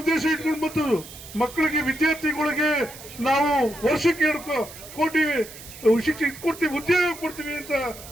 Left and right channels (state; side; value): noise; right; hiss, 16 dB below the sound